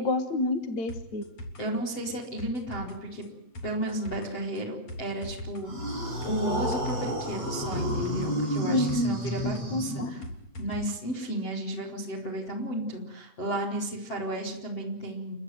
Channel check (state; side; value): late; right; 7.9 ms